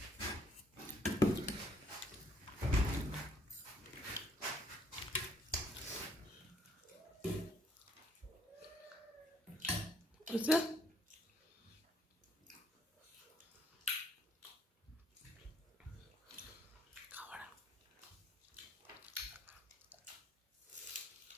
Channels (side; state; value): both; normal; correlation 0.67